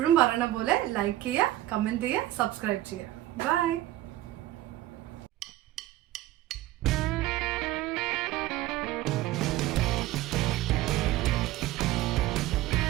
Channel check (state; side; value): quieter; left; 15.3 dB